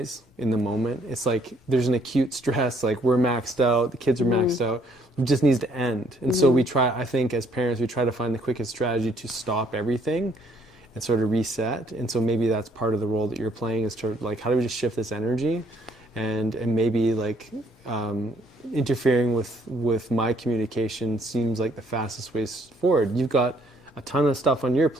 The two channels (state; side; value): normal; both; correlation 0.66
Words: in the moment. It's like there's an acute stress, like we're maxed out, the kids are maxed out. It just needs to end. And so we try, I think as parents, we try to find the quickest strategy to stop everything and sort of reset. And so maybe that's part of the role that you're playing, is to like, how do we just shift this energy and maybe like interfering with my communication seems like the fastest way forward. You've got a ton of stuff on your